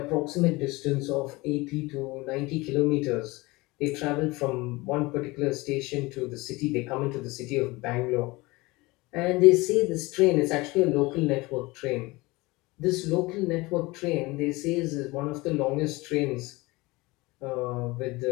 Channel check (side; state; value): right; quieter; 22.5 dB